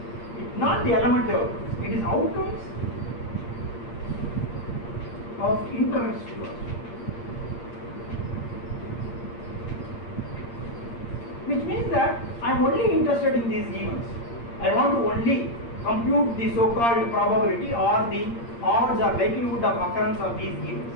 not the elementary outcomes, it is outcomes of interest to us. Which means that I am only interested in these events. I want to only compute the so-called probability or the odds or likelihood of occurrence of these events,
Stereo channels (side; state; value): right; late; 8.7 ms